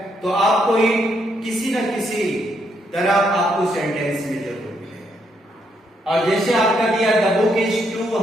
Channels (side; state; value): both; normal; correlation 0.75